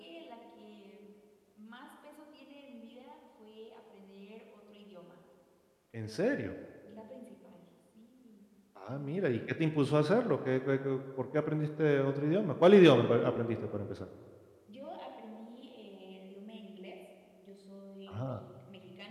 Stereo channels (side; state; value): both; identical; correlation 1.00